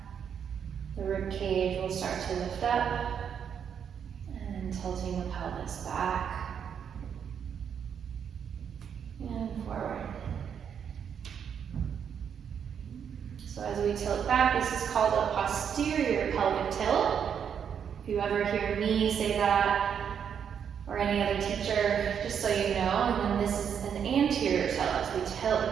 the rib cage will start to lift up. And tilting the pelvis back. And forward. So as we tilt back, this is called a posterior pelvic tilt. If you ever hear me say that, or any other teacher, just so you know. And then this is an anterior tilt as we tilt the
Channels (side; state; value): left; quieter; 7.8 dB